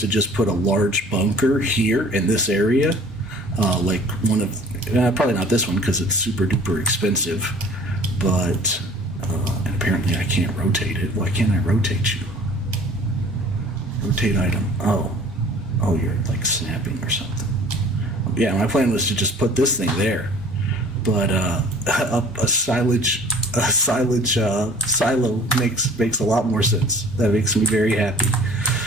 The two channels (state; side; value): normal; both; correlation 0.49